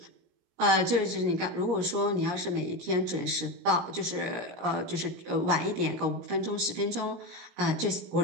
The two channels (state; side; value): late; left; 17 ms